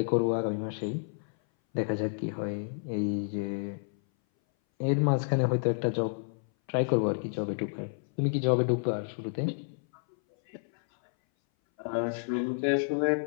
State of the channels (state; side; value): silent; right; 58 dB below the other